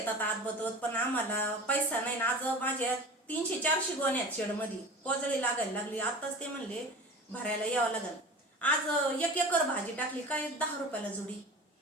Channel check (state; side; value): normal; both; correlation 0.35